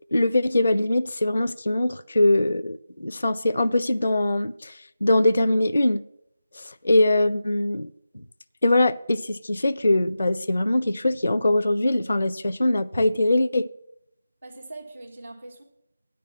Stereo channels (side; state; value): both; inverted; correlation -0.92